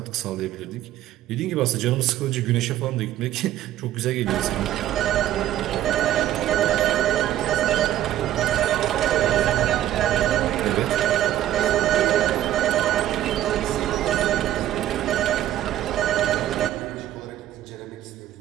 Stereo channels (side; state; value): left; quieter; 12.6 dB